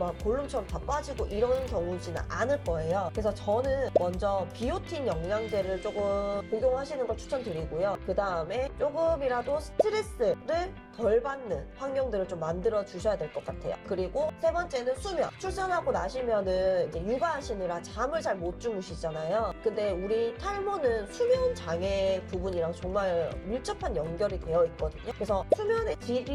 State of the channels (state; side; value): identical; both; correlation 1.00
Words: 볼륨처럼 다 빠지고 이런 경우지는 않을 거예요. 그래서 저는 먼저 비오틴 영양제를 조금 복용하시는 걸 추천드리고요. 그 다음에 조금이라도 스트레스를 덜 받는 환경들을 좀 만들어 주셔야 될 것 같아요. 그리고 세 번째는 수면. 출산하고 나시면은 이제 육아하시느라 잠을 잘 못 주무시잖아요. 근데 우리 탈모는 수면 장애 부분이랑 정말 밀접한 연결이 되어 있거든요. 그래서 수면의